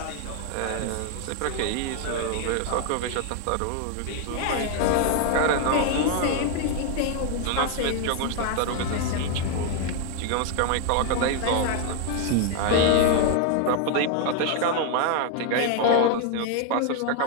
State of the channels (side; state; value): both; different; correlation 0.00